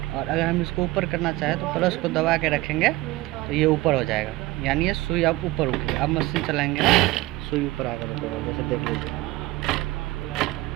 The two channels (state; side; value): quieter; left; 18.7 dB